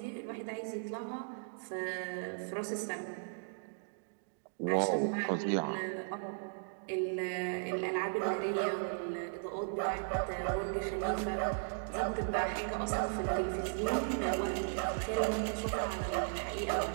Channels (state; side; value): silent; left; digital silence